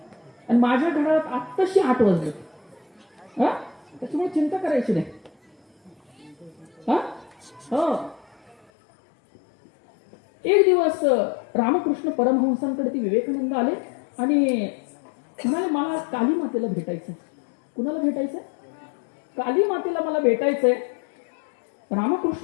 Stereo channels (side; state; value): right; drops out; at 8.6 s